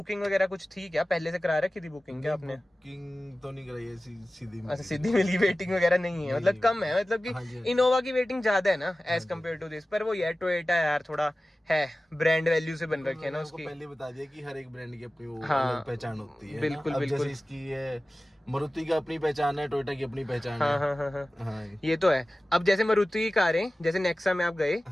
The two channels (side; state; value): both; normal; correlation 0.96